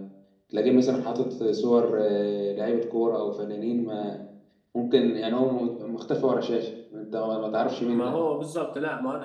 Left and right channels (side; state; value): both; identical; correlation 1.00